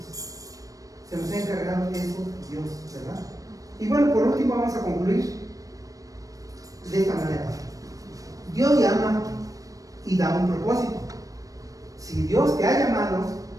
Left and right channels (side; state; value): left; late; 0.16 ms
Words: Se nos ha encargado eso Dios, ¿verdad? Y bueno, por último vamos a concluir de esta manera. Dios llama y da un propósito. Si Dios te ha llamado